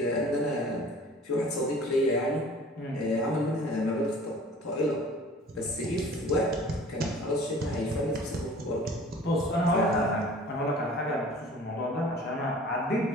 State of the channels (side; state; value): both; normal; correlation 0.46